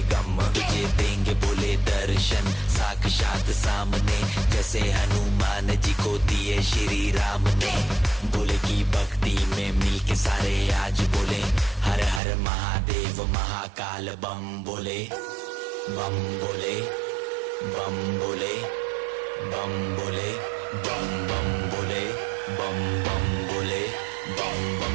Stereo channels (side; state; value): left; drops out; at 12.2 s